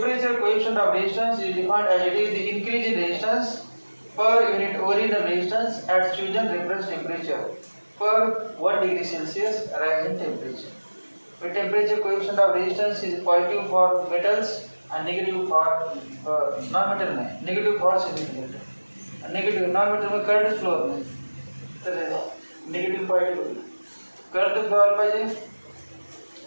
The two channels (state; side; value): inverted; both; correlation -1.00